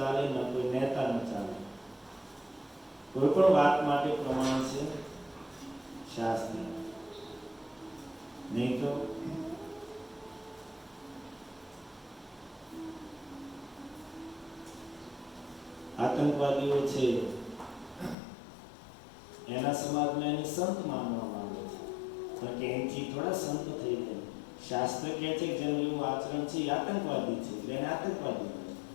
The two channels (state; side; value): drops out; right; at 18.2 s